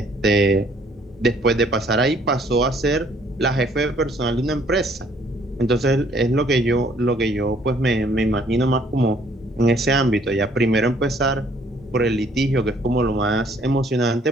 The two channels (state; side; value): normal; both; correlation 0.62